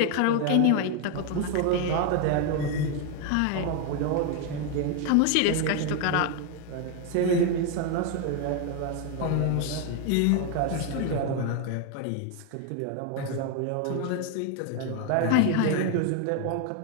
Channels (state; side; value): different; both; correlation 0.01